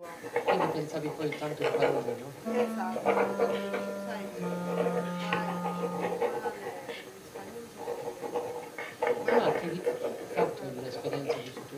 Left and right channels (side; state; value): both; identical; correlation 1.00